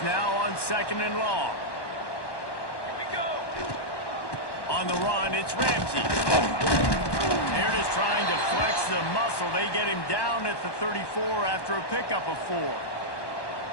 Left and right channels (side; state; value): right; late; 1.1 ms